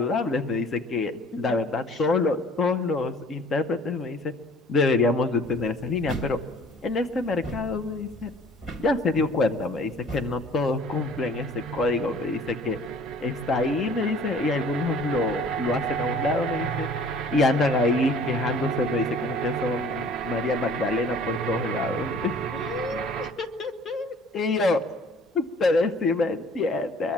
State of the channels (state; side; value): normal; both; correlation 0.51